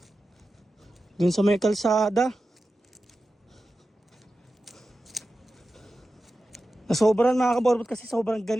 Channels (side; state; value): both; normal; correlation 0.92